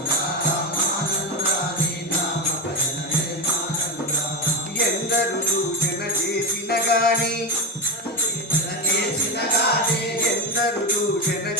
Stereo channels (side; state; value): both; normal; correlation 0.14